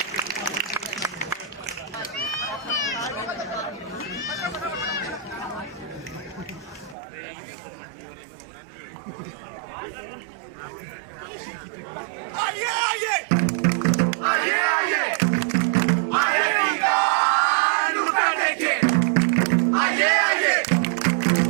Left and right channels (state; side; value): drops out; left; at 7.0 s